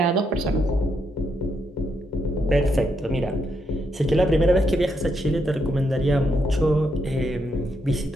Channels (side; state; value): both; normal; correlation 0.78